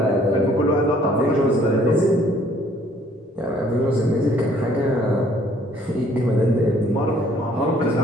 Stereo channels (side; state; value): both; normal; correlation 0.60